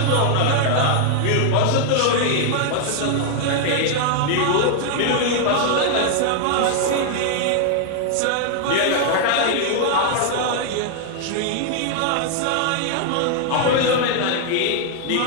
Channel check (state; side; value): different; both; correlation 0.00